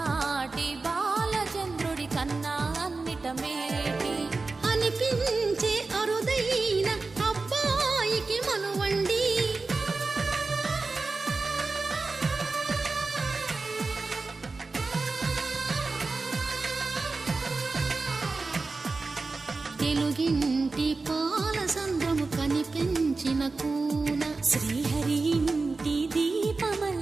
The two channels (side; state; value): left; quieter; 3.8 dB